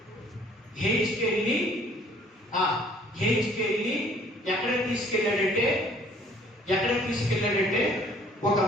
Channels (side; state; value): both; normal; correlation 0.57